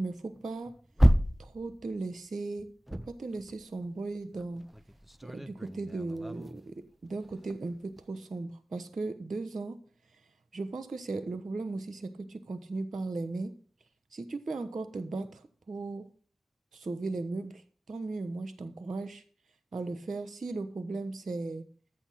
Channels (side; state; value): both; normal; correlation 0.97